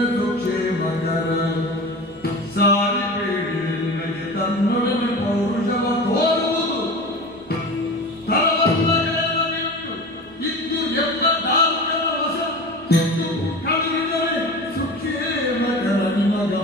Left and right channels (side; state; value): right; noise; rumble, 28 dB below the sound